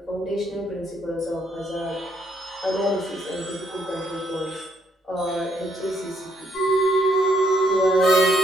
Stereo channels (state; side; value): normal; both; correlation 0.72